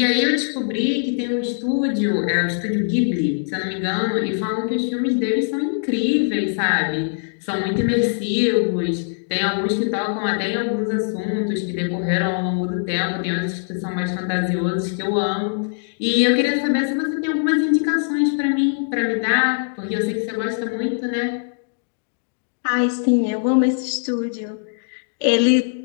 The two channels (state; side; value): silent; right; digital silence